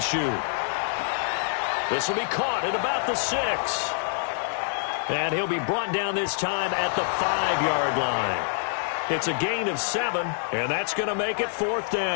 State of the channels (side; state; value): right; silent; digital silence